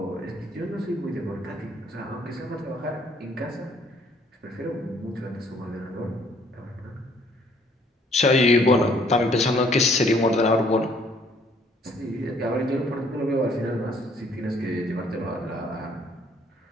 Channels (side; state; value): both; normal; correlation 0.62